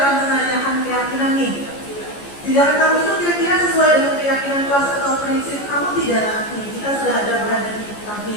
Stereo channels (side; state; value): right; late; 14 ms